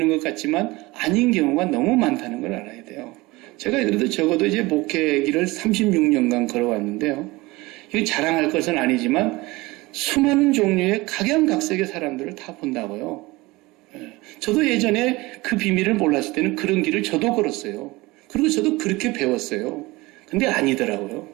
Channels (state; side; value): quieter; left; 21.6 dB